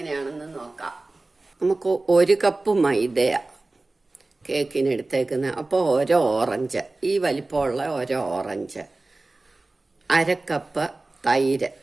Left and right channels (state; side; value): quieter; left; 3.1 dB